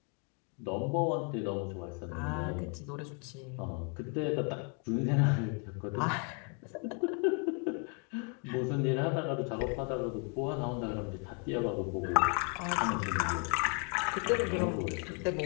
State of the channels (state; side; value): quieter; right; 38.3 dB